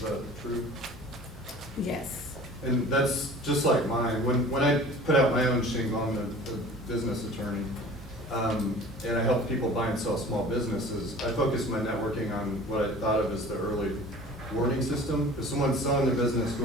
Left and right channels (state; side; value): normal; both; correlation 0.44